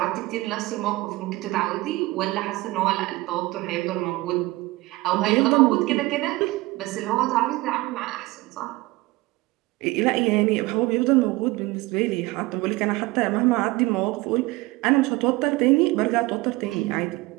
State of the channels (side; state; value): left; quieter; 20.6 dB